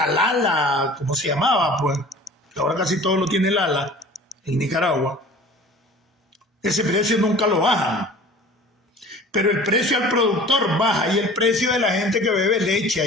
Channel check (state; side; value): normal; both; correlation 0.44